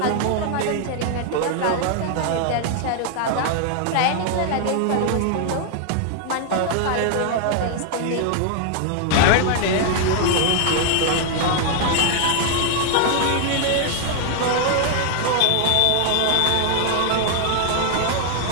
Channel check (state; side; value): different; both; correlation 0.00